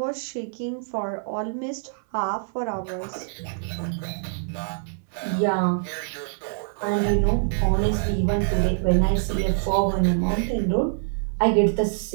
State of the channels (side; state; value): left; silent; digital silence